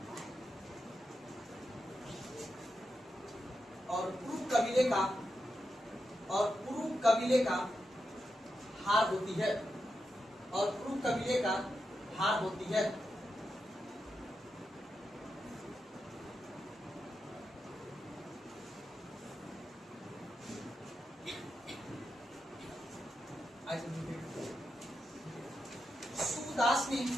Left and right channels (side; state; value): both; normal; correlation 0.87